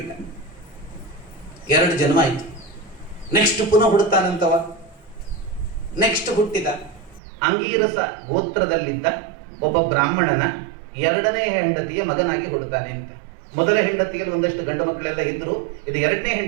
2 ಜನ್ಮ ಆಯಿತು. ನೆಕ್ಸ್ಟ್ ಪುನಃ ಹುಡುತಾನಂತವ. ನೆಕ್ಸ್ಟ್ ಹುಟ್ಟಿದ ಅಂಗೀರಸ ಗೋತ್ರದಲ್ಲಿದ್ದ ಒಬ್ಬ ಬ್ರಾಹ್ಮಣನ 2ನೇ ಹೆಂಡತಿಯ ಮಗನಾಗಿ ಹುಡುತಾನೆ ಅಂತ. ಮೊದಲ ಹೆಂಡತಿಯಲ್ಲಿ ಒಂದಷ್ಟು ಗಂಡು ಮಕ್ಕಳೆಲ್ಲ ಇದ್ರು, ಇದು 2ನೇ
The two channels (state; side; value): drops out; left; at 7.2 s